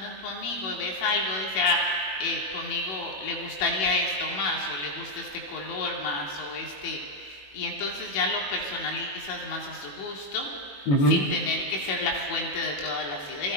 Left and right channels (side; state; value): right; late; 21 ms